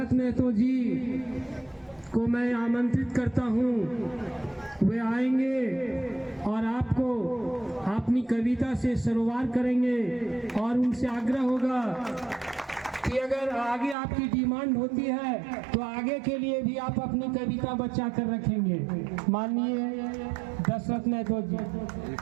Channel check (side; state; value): left; drops out; at 14.0 s